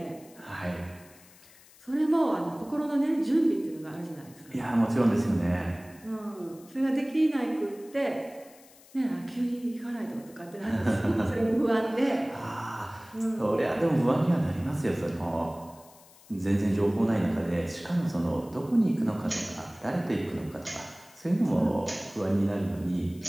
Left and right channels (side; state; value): left; noise; hiss, 24 dB below the sound